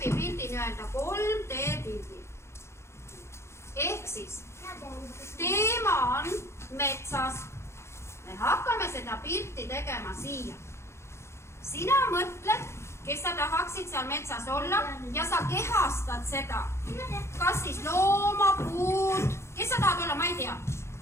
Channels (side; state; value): right; late; 0.13 ms